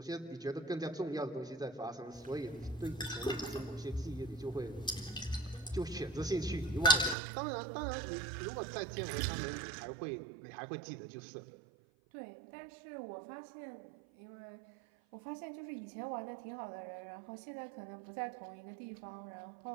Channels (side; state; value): left; drops out; at 7.2 s